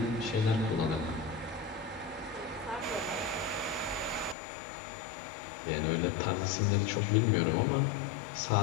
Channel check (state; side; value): drops out; right; at 4.4 s